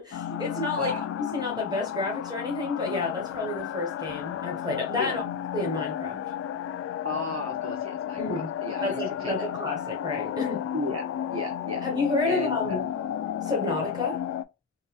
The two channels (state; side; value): quieter; right; 4.8 dB